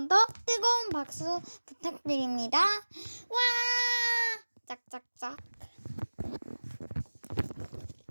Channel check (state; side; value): inverted; both; correlation -1.00